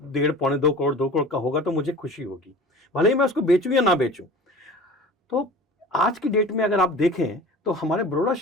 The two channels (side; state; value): both; normal; correlation 0.39